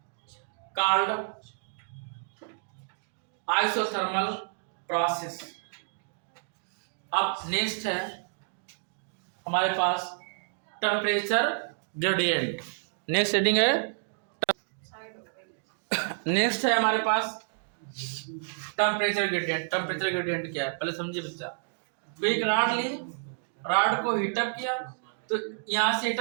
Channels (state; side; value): silent; left; digital silence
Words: isothermal process। अब नेक्स्ट है हमारे पास टेम्परेचर ग्रेडियंट। नेक्स्ट हेडिंग है, नेक्स्ट है हमारे पास टेम्परेचर ग्रेडियंट। टेम्परेचर ग्रेडियंट क्या है पहले समझिए बच्चा। तो एक रॉड ली, रॉड को हीटअप किया, तो यहाँ से